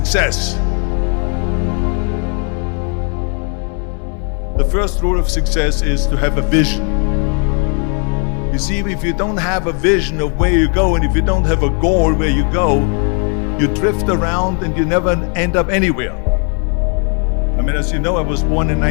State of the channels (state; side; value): quieter; right; 39.3 dB